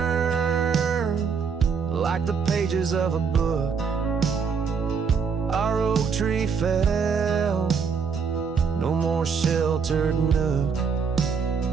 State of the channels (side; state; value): left; quieter; 6.0 dB